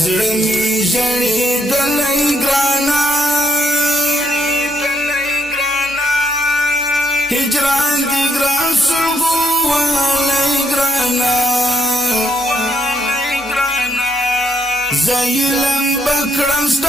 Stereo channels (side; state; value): both; normal; correlation 0.74